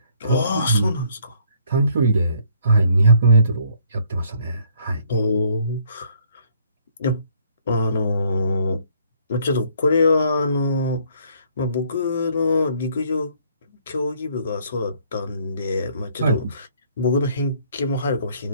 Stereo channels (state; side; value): inverted; both; correlation -0.64